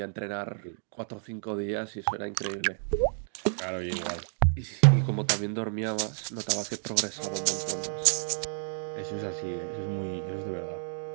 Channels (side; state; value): left; silent; 55 dB below the other